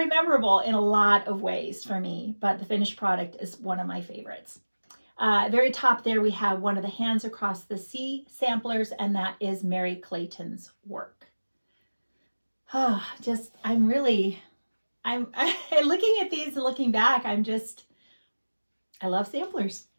memorable in a lot of ways for me, but the finished product is one of my favorites. Very top there, we have one of the Hands Across the Sea samplers, and that is Mary Clayton's work. I'm looking at these and looking back, I love samplers.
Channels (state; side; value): inverted; both; correlation -1.00